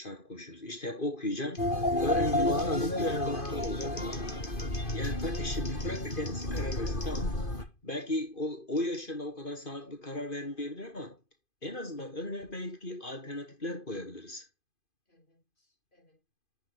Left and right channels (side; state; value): right; late; 2.5 ms